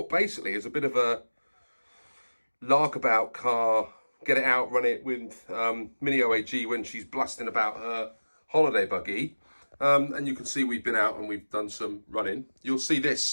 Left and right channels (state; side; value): inverted; both; correlation -1.00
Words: basically as a bit of a larkabout car, get it out, run it with Mini OAG when she's blasting about her holiday buggy. And you can see we've been out and we've done some running. You'll see